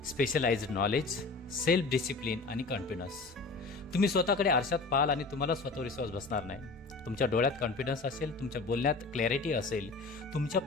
स्पेशलाइज्ड नॉलेज, सेल्फ डिसिप्लिन आणि कॉन्फिडन्स. तुम्ही स्वतःकडे आरशात पाहाल आणि तुम्हाला स्वतःवर विश्वास बसणार नाही. तुमच्या डोळ्यात कॉन्फिडन्स असेल, तुमच्या बोलण्यात क्लॅरिटी असेल, तुमच्या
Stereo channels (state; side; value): quieter; right; 3.8 dB